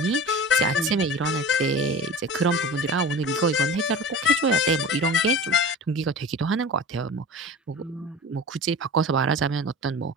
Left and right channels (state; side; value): normal; both; correlation 0.35